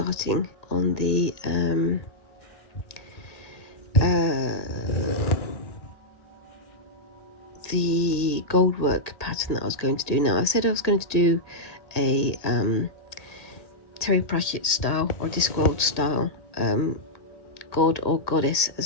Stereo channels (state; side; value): late; right; 1.8 ms